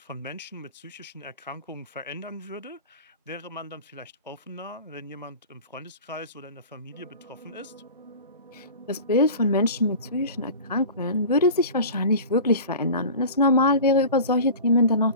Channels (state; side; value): inverted; both; correlation -0.36